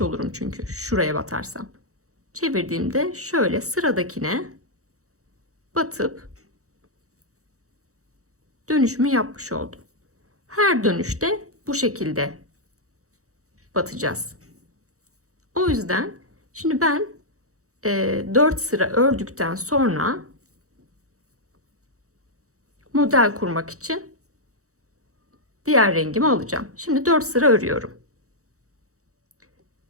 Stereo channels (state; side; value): late; left; 0.65 ms